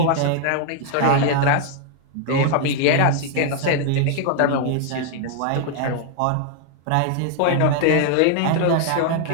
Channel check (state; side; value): different; both; correlation 0.00